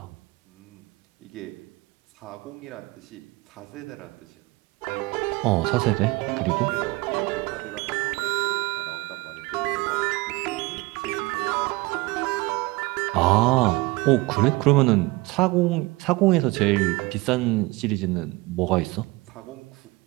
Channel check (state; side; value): quieter; left; 22.8 dB